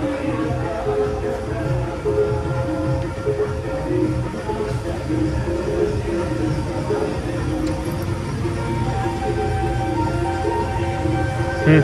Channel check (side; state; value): both; identical; correlation 1.00